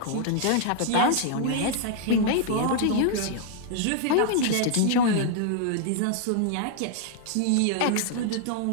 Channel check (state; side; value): different; both; correlation 0.00